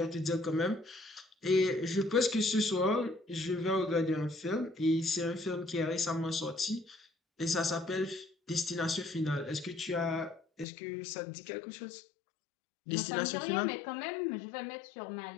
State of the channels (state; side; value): drops out; right; at 10.7 s